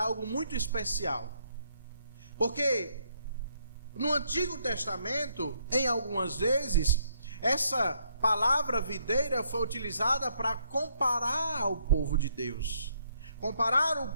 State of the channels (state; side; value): inverted; both; correlation -0.71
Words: algo muito especial, porque no Antigo Testamento, em algumas vezes, essa palavra videira foi utilizada para comparar o povo de Deus, comparar